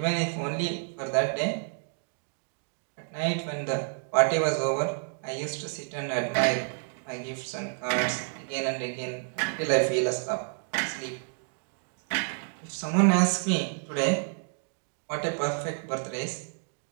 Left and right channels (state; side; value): silent; left; 58 dB below the other